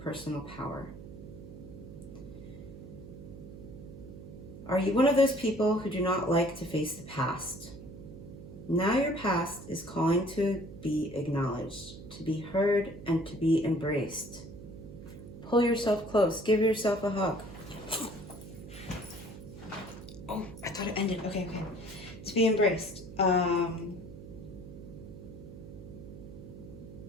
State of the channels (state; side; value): noise; right; hum, 13 dB below the sound